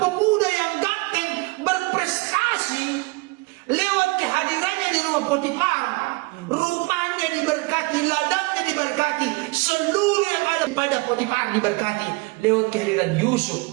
yang ganteng, berprestasi, lewat kehadirannya di rumah Potifar, rumahnya diberkati, ladangnya diberkati, seluruh yang ada pada Potifar diberkati lewat kehadiran Yusuf.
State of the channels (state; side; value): quieter; left; 26.4 dB